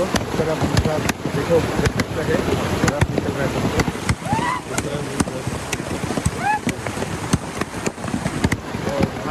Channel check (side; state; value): both; identical; correlation 1.00